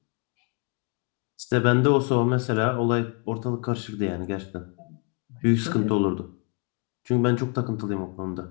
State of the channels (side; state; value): right; quieter; 35.2 dB